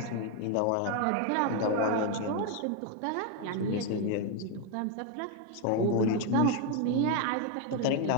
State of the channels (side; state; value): both; different; correlation 0.01